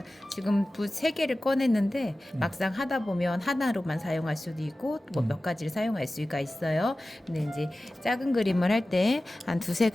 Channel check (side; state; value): both; normal; correlation 0.96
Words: 지금 붓 3개를 꺼냈는데 막상 하다 보면 하나로만 사용할 수도 있고 뭐 몇 가지를 사용할 수가 있어요. 근데 이제 작은 그림을 할 때 한